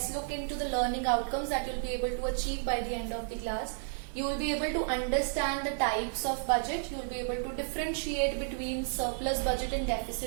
look into the learning outcomes that you'll be able to achieve by the end of the class. You will be able to understand the types of budget, you will be able to differentiate between surplus budget and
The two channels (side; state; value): left; silent; digital silence